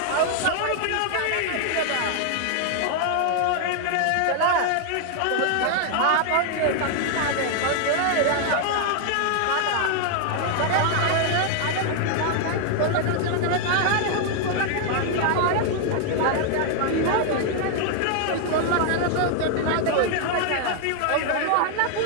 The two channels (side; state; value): both; different; correlation 0.00